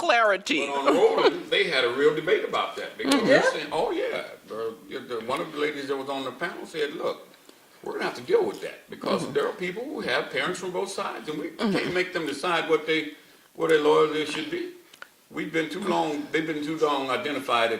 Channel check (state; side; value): identical; both; correlation 1.00